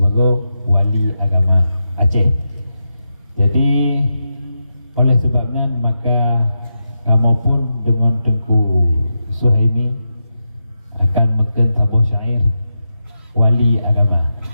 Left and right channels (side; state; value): both; inverted; correlation -0.88